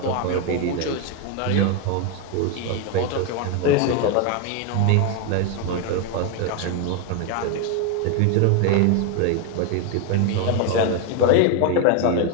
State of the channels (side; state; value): both; different; correlation 0.01